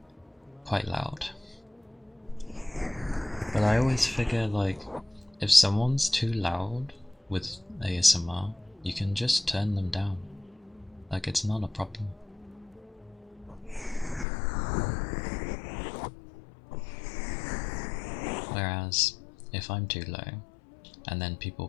quite loud. But I always figure, like, if someone's too loud with ASMR, you can just turn them down. Like, it's not a problem. Whereas, if I'm too low, and then people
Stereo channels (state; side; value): drops out; right; at 14.2 s